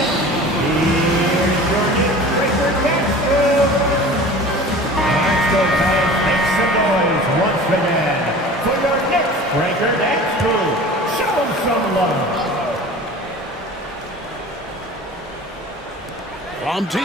Make some noise once again for your Knicks breaker next crew. Show them some love. From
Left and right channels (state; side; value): normal; both; correlation 0.40